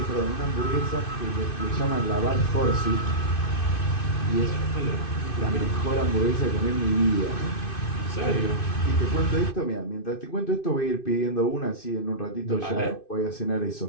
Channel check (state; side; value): late; right; 2.6 ms